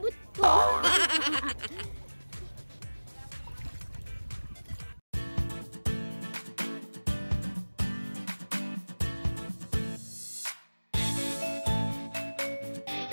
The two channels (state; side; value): inverted; both; correlation -1.00